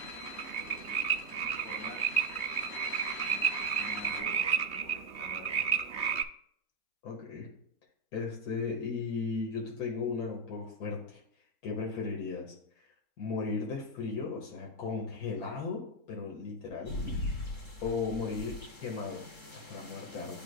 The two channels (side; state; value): right; late; 3.2 ms